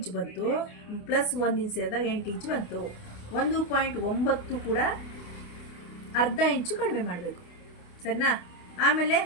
ಬಂತು, ಪ್ಲಸ್ 1 ಇಂಚ್ ಸೇರಿದಾಗ 8 ಇಂಚು ಬಂತು. 1.9 ಕೂಡ ಅರ್ಧ ಇಂಚು ಕಡಿಮೆ ಮಾಡಬೇಕು. ಸರಿನಾ? ಆಮೇಲೆ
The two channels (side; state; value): right; late; 28 ms